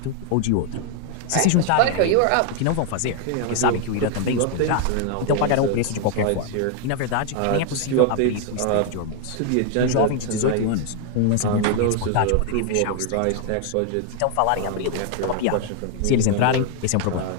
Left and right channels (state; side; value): different; both; correlation 0.00